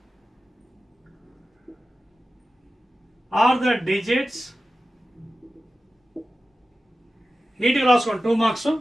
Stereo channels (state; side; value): normal; both; correlation 0.93